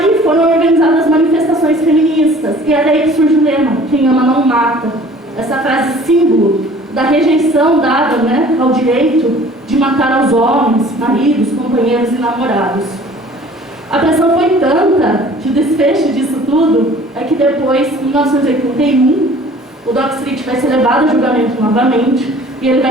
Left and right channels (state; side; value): normal; both; correlation 0.50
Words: foram organizadas manifestações feministas, e é daí que surge o lema, quem ama não mata. Essa frase símbolo da rejeição dada, né, ao direito de matar aos homens, maridos, companheiros e namorados. A pressão foi tanta que o desfecho disso tudo é que depois, em 1981, o Doc Street vai ser levado a julgamento novamente e ele